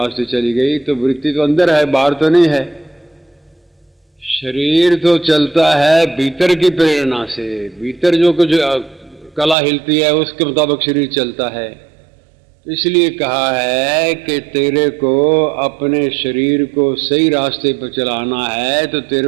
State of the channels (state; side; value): drops out; left; at 9.6 s